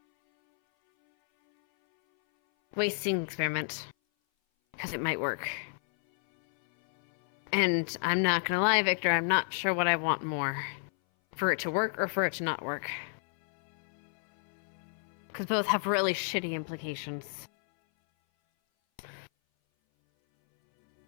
wasting the experiment. Because it might work. And I'm not gonna lie, Victor, I'm not sure what I want more. For it to work or for it to not work. Because both have really shitty implications.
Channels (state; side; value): silent; right; 57 dB below the other